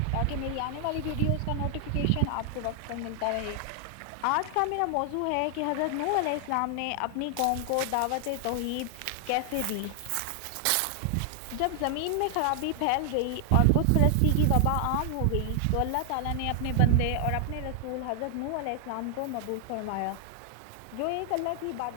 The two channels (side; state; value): both; different; correlation 0.00